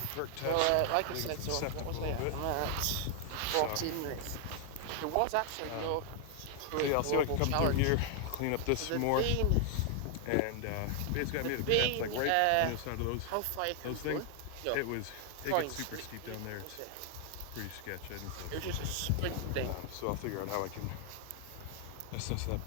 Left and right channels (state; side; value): different; both; correlation 0.00